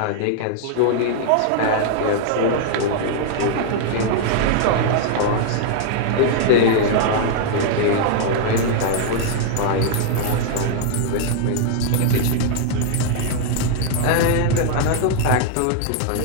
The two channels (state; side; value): different; both; correlation 0.00